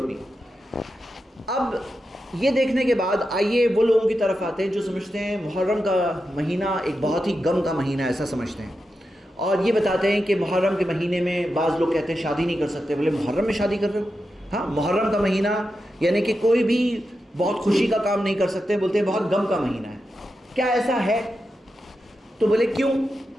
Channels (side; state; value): both; normal; correlation 0.89